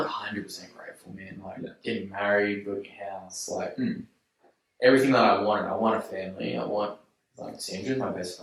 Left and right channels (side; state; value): both; identical; correlation 1.00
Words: 100% grateful, man. Like getting married, building a house, like everything that I wanted. I want a family. I want like Sandra's my best